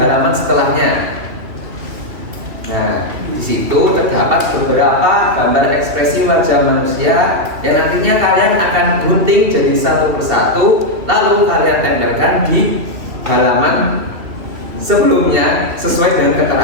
setelahnya. Nah, di situ terdapat beberapa gambar ekspresi wajah manusia yang nantinya kalian akan gunting jadi satu persatu, lalu kalian tempelkan di halaman sebelumnya sesuai dengan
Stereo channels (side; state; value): left; late; 3.0 ms